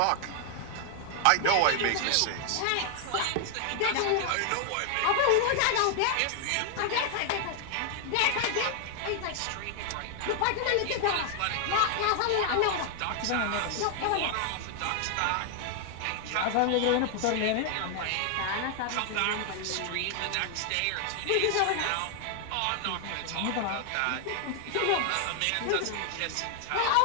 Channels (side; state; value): both; different; correlation 0.00